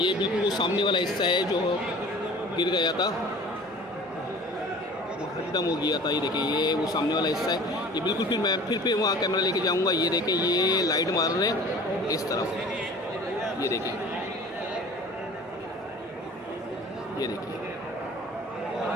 बिल्कुल वो सामने वाला हिस्सा है जो गिर गया था, खत्म हो गया था। ये देखें, ये वो सामने वाला हिस्सा है। ये बिल्कुल मैं फिर वहाँ कैमरा लेके जाऊँगा। ये देखें, ये लाइट मार रहे हैं इस तरफ। ये देखिए,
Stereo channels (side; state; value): both; normal; correlation 0.44